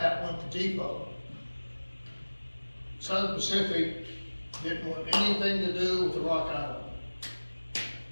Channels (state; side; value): inverted; both; correlation -1.00